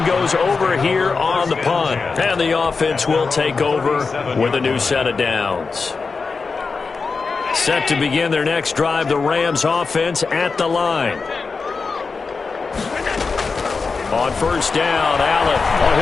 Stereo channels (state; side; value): quieter; right; 4.6 dB